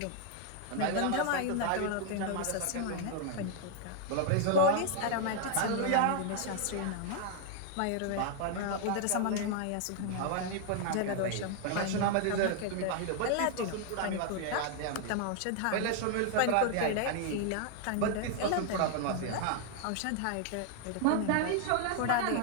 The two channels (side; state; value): both; different; correlation 0.00